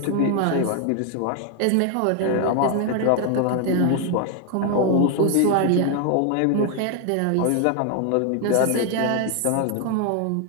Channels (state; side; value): different; both; correlation 0.01